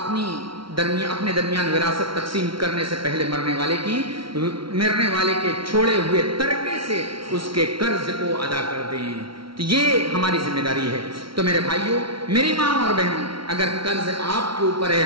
درمیان وراثت تقسیم کرنے سے پہلے مرنے والے کے چھوڑے ہوئے ترکے سے اس کے قرض کو ادا کر دیں۔ تو یہ ہماری ذمہ داری ہے۔ تو میرے بھائیوں، میری ماں اور بہنوں، اگر قرض آپ کے اوپر ہے،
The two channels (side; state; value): left; late; 0.74 ms